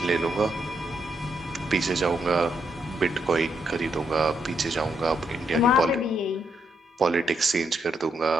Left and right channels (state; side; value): normal; both; correlation 0.78